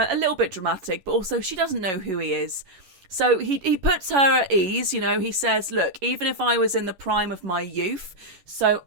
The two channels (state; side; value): late; left; 11 ms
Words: little bit dramatic, but also she doesn't know who he is. So he puts her at ease, he says, look, even if I was in the prime of my youth, so